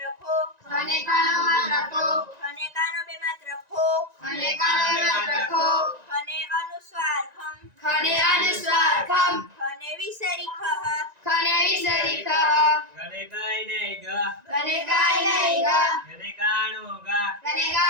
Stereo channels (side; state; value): left; late; 1.9 ms